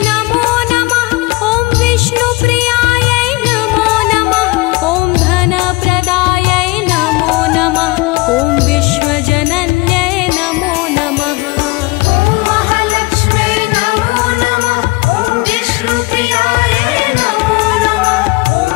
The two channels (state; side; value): quieter; right; 23.2 dB